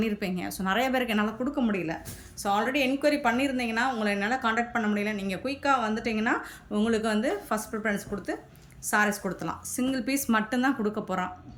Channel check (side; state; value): both; identical; correlation 1.00